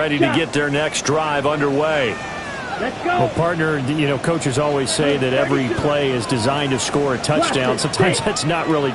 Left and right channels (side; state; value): both; identical; correlation 1.00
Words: to get their next drive underway. Let's go. Well, partner, you know, coaches always say that every play is designed to score a touchdown. Sometimes that's not really